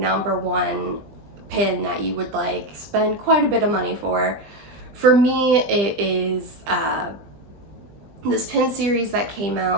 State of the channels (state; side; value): late; left; 20 ms